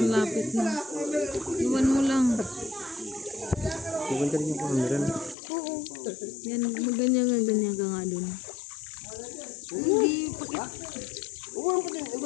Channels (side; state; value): right; drops out; at 5.4 s